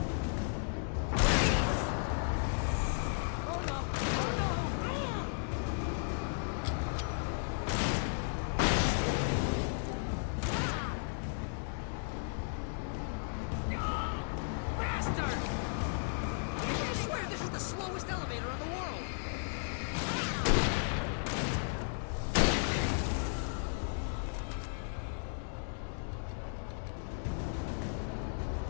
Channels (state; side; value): silent; right; digital silence